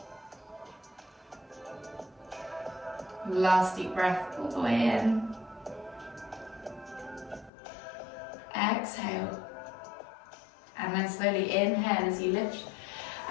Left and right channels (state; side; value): drops out; right; at 7.5 s